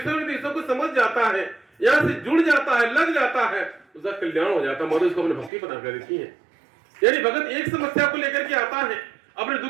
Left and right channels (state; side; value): drops out; left; at 5.5 s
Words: निर्देशों को समझ जाता है, यहाँ से जुड़ जाता है, लग जाता है, उसका कल्याण हो जाता है। माता उसको अपने भक्ति प्रदान कर देती है। यानी भगत एक समस्या को लेकर के आता है, अपने दुख